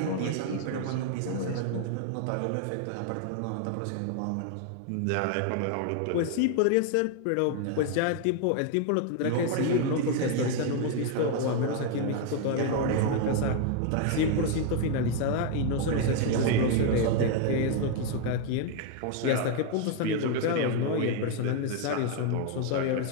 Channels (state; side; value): different; both; correlation 0.00